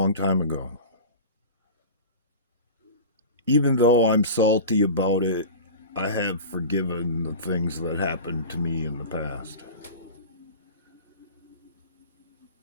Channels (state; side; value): inverted; both; correlation -0.32